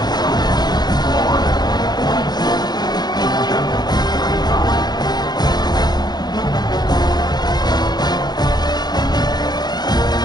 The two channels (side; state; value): right; late; 0.20 ms